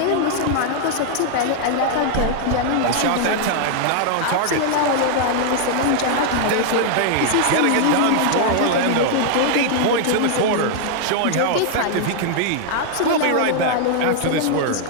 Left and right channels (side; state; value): both; different; correlation 0.00